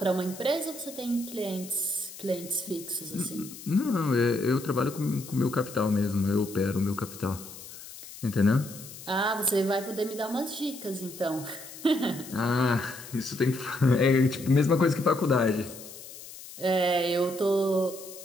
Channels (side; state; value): left; noise; hiss, 15 dB below the sound